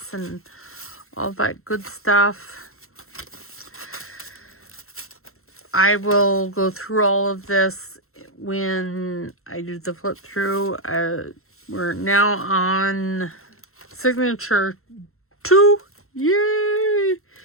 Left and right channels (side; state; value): right; late; 0.62 ms